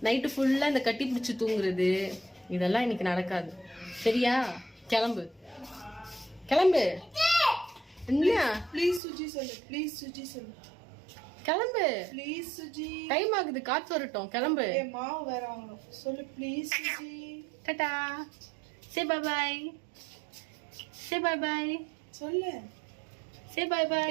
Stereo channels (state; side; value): drops out; left; at 9.0 s